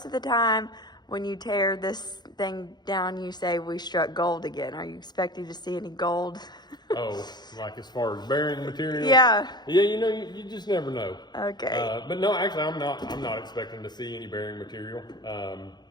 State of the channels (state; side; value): late; right; 0.21 ms